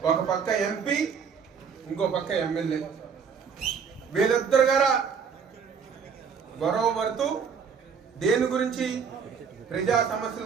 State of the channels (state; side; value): quieter; left; 6.4 dB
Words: ఒక పక్క ఎంపీ, ఇంకో పక్క ఎమ్మెల్యే, వీళ్ళిద్దరు గారా గొడవ పడుతూ దేని గురించి, ప్రజా సమస్యల